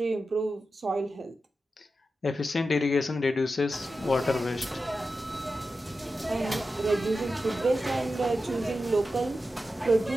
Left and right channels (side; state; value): both; normal; correlation 0.91